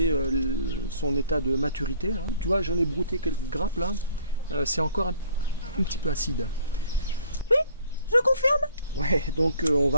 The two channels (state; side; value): inverted; both; correlation -0.57